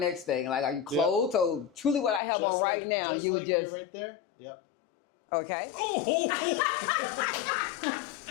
thing. Like, are you clothed? So truly, what I have Just on right now, just you like just you're right there. Yep. okay.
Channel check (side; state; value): right; drops out; at 2.2 s